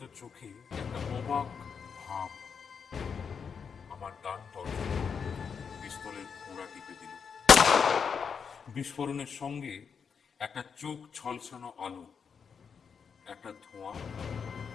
চোখে একটা অবাক ভাব। আমার ডান তর্জনী পিস্তলের ঘোড়া টিপে দিল। বিস্ফোরণের সঙ্গে একটা চোখ ছলছানো আলো, একটা ধোঁয়া,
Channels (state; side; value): quieter; right; 6.4 dB